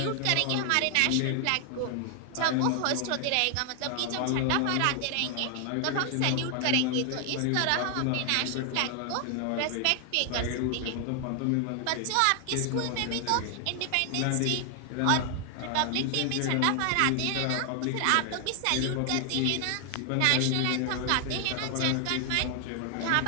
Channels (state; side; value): different; both; correlation 0.00